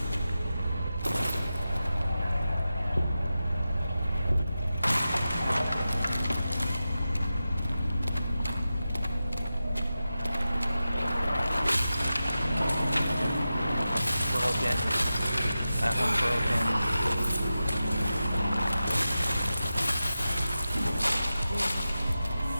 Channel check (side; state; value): both; inverted; correlation -0.93